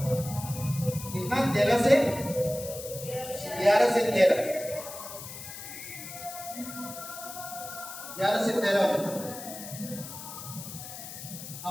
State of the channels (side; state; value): left; noise; hiss, 11 dB below the sound